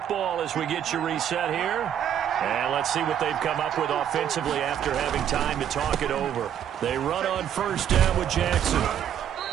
as we get you reset here. And let's see what they've come up with offensively after having time to talk it over. They run on 1st down with Jackson.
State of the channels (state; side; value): quieter; left; 9.7 dB